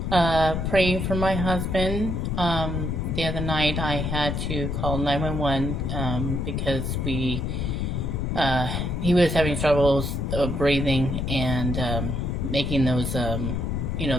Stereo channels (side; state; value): left; noise; rumble, 1 dB below the sound